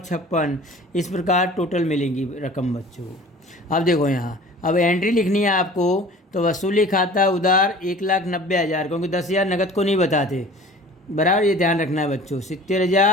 56। इस प्रकार टोटल मिलेंगी रकम बच्चों। अब देखो यहाँ, अब एंट्री लिखनी है आपको, तो वसूली खाता उधार 1,90,000, क्योंकि 10,000 नकद को नहीं बताते, बराबर ये ध्यान रखना है बच्चों।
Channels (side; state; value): both; normal; correlation 0.45